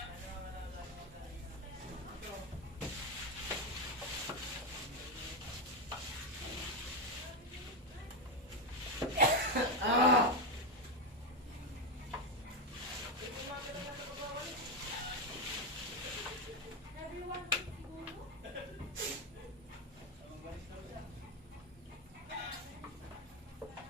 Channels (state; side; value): normal; both; correlation 0.09